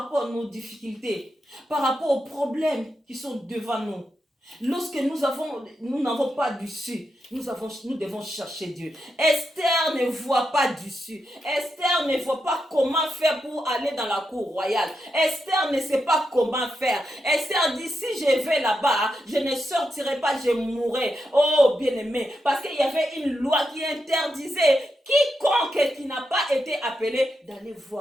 rapport à nos difficultés, par rapport aux problèmes qui sont devant nous. Lorsque nous n'avons pas d'issue, nous devons chercher Dieu. Esther ne voit pas d'issue. Esther ne voit pas comment faire pour aller dans la cour royale. Esther ne sait pas comment faire. Esther dit, si je vais là-bas, je ne sortirai pas, je mourrai. Oh, bien-aimé, parce qu'il y avait une loi qui interdisait quiconque qui n'a pas été appelé d'aller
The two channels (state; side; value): normal; both; correlation 0.85